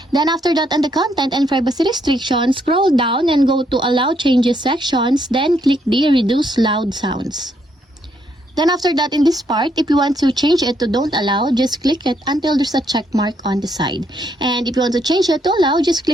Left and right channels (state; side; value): normal; both; correlation 0.74